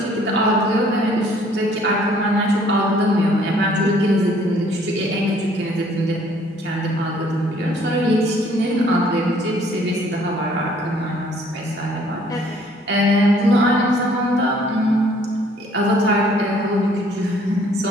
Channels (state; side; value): normal; both; correlation 0.60